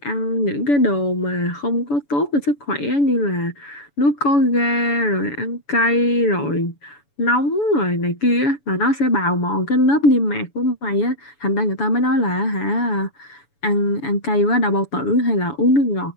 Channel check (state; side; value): late; right; 7.0 ms